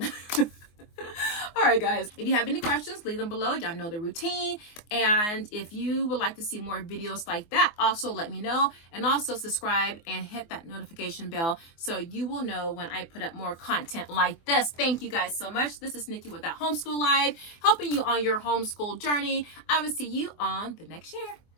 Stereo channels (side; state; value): right; late; 24 ms